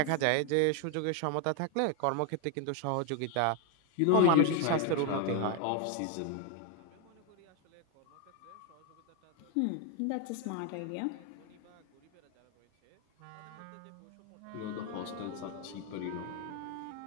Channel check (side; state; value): both; different; correlation 0.00